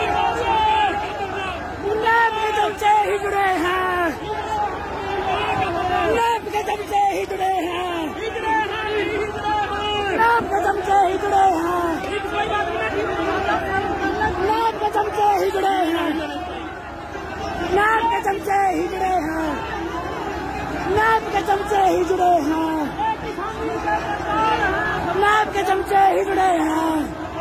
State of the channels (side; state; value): both; identical; correlation 1.00